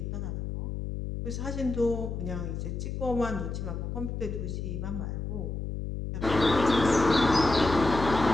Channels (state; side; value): noise; left; hum, 4 dB below the sound